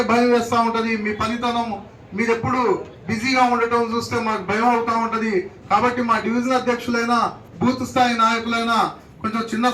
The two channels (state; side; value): identical; both; correlation 1.00